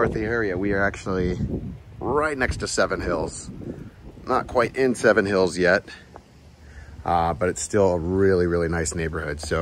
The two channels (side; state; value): both; identical; correlation 1.00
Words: the area, we are actually right next to Seven Hills. Not quite in Seven Hills yet, but it's still a really, really nice neighborhood.